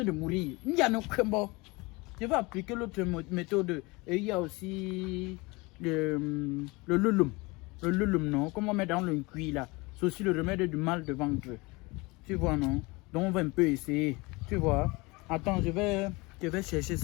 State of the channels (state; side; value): quieter; right; 24.9 dB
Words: de mourir. Il y a no bon. Je vais appliquer l'autre méthode. Et il y a aussi le lulum. Le lulum, non? Comme on met dans le cuit là. C'est aussi le remède du mal de ventre. Tu vois, non? Donc on va un peu essayer. Tu vois? Attends, je vais chercher